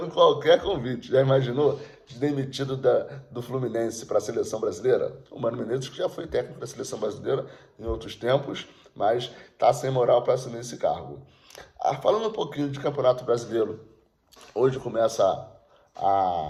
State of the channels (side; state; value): both; identical; correlation 1.00